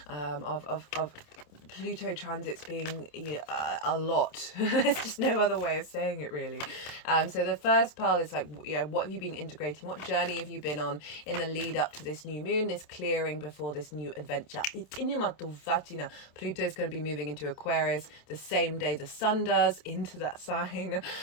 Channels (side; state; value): right; late; 27 ms